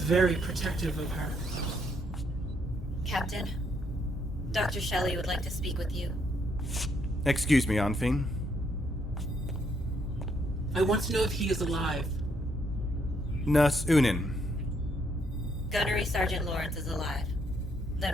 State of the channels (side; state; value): both; normal; correlation 0.73